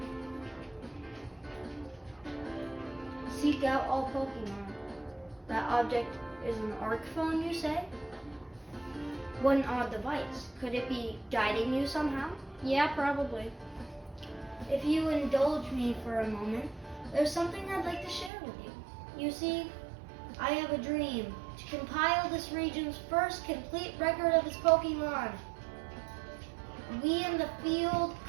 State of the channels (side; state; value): left; drops out; at 18.3 s